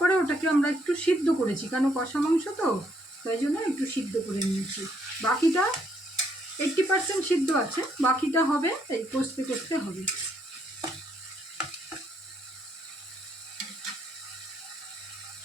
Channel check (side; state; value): both; normal; correlation 0.72